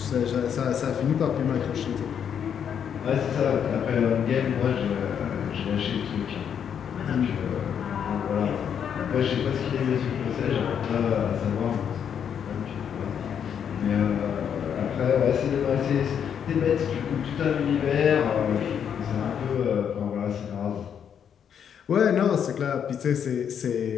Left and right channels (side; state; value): right; quieter; 8.2 dB